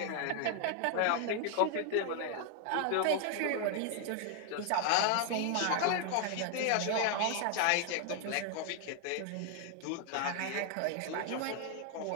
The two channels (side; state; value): both; different; correlation 0.00